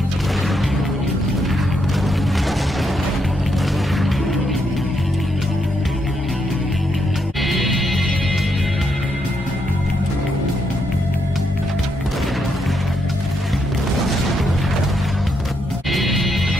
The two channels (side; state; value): both; normal; correlation 0.79